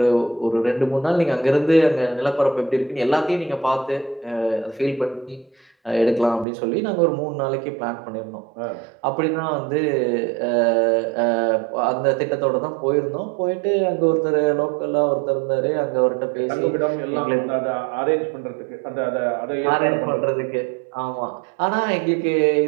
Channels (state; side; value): drops out; left; at 6.5 s